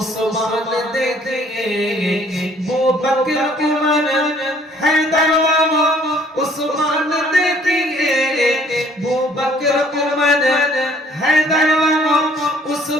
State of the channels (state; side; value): normal; both; correlation 0.59